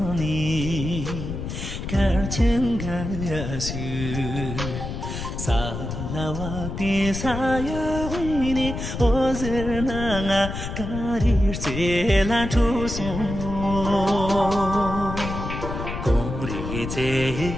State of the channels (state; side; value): noise; left; rumble, 6 dB below the sound